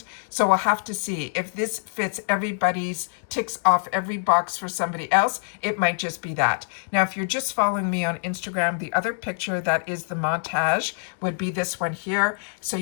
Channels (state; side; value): silent; right; digital silence